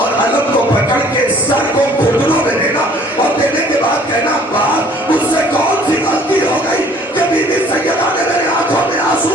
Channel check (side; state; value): both; normal; correlation 0.55